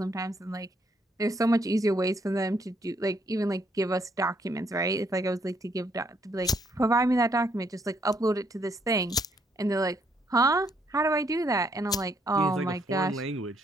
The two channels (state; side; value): normal; both; correlation 0.71